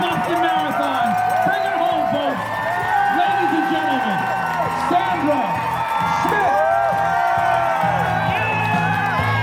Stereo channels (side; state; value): both; identical; correlation 1.00